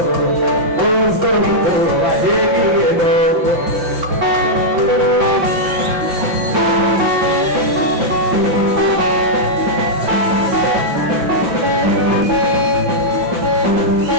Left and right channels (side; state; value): left; late; 5.8 ms